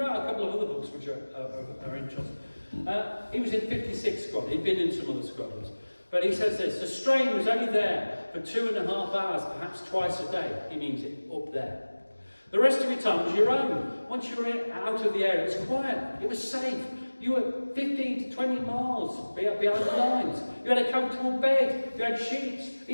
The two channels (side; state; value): both; inverted; correlation -1.00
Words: a couple of other books which are interesting. He was in 56 squad. He'd been in some other squadrons. But he says this: the strain was only there for 2.5 hours, perhaps twice a day. He means it up there. The rest of your time was your own. Once you were out of the air, it was quiet. It was safe. You were 15 to 20 miles behind the lines. You had a comfortable bed. You had sheets,